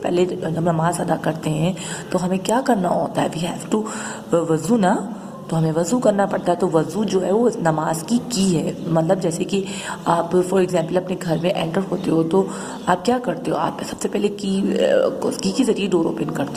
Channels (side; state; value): both; identical; correlation 1.00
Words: پہلے جب نماز ادا کرتے ہیں تو ہمیں کیا کرنا ہوتا ہے؟ وی ہیو ٹو وضو نا, تو ہمیں وضو کرنا پڑتا ہے. تو وضو جو ہے وہ نماز کی ہے. مطلب جیسے کہ آپ فار ایگزامپل اپنے گھر میں انٹر ہوتے ہو تو آپ کیا کرتے ہو؟ آپ سب سے پہلے کی کے ذریعے ڈور اوپن